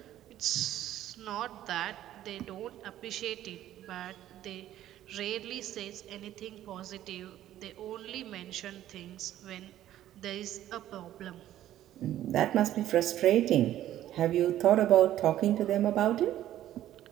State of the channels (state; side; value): quieter; left; 12.7 dB